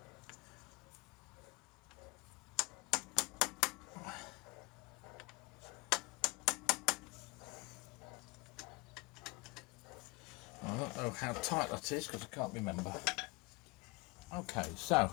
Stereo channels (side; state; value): right; quieter; 25.9 dB